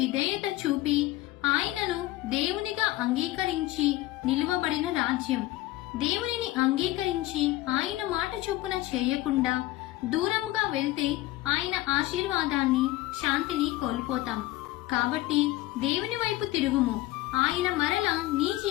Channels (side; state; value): right; quieter; 17.2 dB